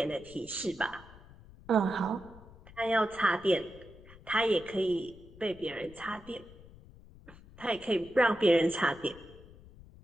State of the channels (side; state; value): left; noise; rumble, 21 dB below the sound